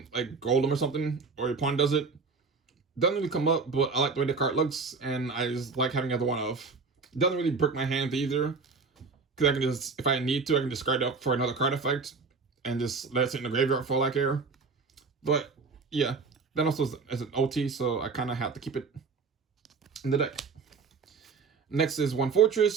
like Golem or something, or your opponent does it. Doesn't really come up, but I like the way the card looks, and I just like having the other 1-off. It doesn't really break my hands either, because I can just, if I need to, I can discard it up for another card effect, and just let it sit in the graveyard for all I care. But yeah, that also is an OT, so I kind of have to keep it in the deck. Next is 1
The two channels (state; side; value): quieter; left; 4.7 dB